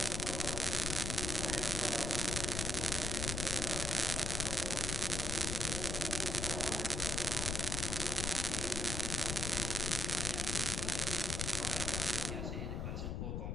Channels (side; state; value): left; noise; rumble, 1 dB below the sound